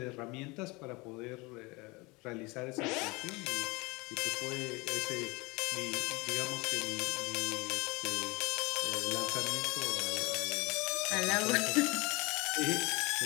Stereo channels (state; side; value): quieter; right; 25.2 dB